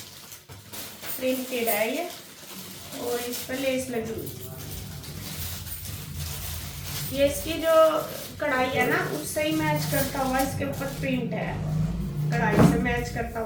प्रिंटेड है ये, और इस पर लेस लगी हुई। ये इसकी जो कढ़ाई है ना उससे ही मैच करता हुआ इसके ऊपर प्रिंट है, कढ़ाई से मैच करता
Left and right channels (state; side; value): identical; both; correlation 1.00